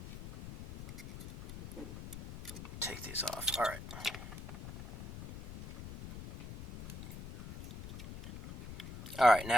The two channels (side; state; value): left; noise; rumble, 11 dB below the sound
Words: Take these off. Alright. Alright,